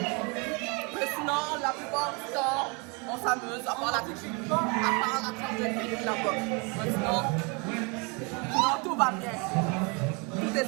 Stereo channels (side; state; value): left; quieter; 31.5 dB